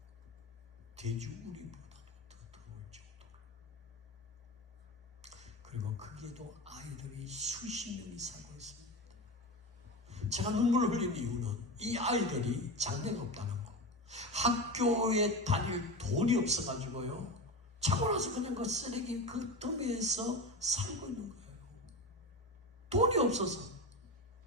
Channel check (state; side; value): normal; both; correlation 0.23